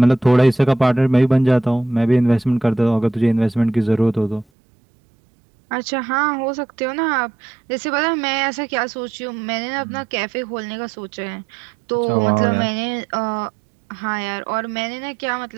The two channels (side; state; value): left; drops out; at 4.5 s